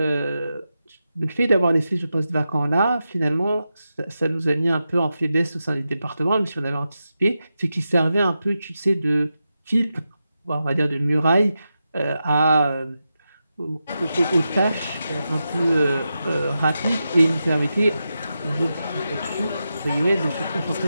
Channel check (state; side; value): inverted; both; correlation -0.89